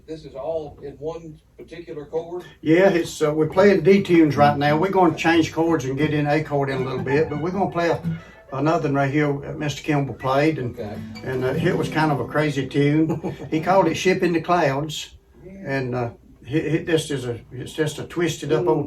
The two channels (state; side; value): identical; both; correlation 1.00